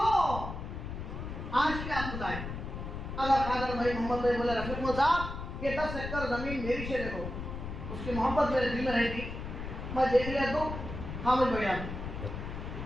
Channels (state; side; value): noise; left; rumble, 7 dB below the sound